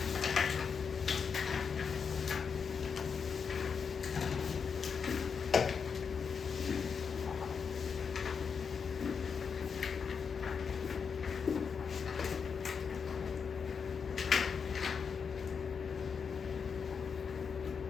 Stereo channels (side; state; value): right; quieter; 6.1 dB